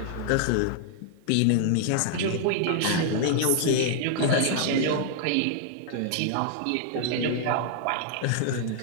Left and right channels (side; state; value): both; different; correlation -0.01